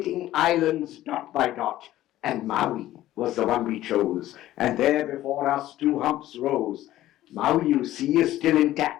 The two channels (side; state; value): right; quieter; 14.4 dB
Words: islands dot by dot. And Maui was the one we chose. And there before us 2 humps rose. Maui, you see, is still